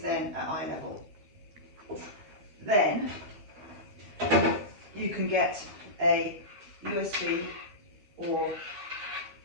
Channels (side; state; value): left; late; 12 ms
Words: then at eye level. Then you can get a USB or